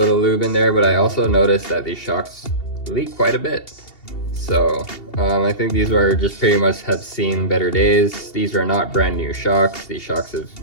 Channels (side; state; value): right; late; 2.7 ms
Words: lube in there, but I also noticed that these shocks leak quite a bit. So I think these are just pretty much have seen better days. These are not brand new shocks. These shocks